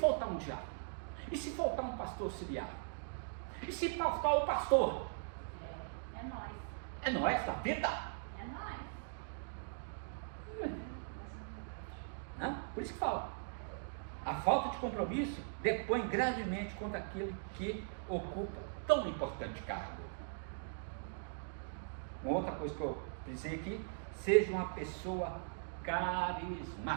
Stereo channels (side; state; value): left; silent; digital silence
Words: um diácono? E se faltar um pastor auxiliar? E se faltar o pastor? É nós. É nós da vida. É nós. Por isso que fala, a falta de compromisso depõe gravemente contra aquele que ocupa tão importante cargo. Uma outra coisa que eu pensei aqui, seja uma pessoa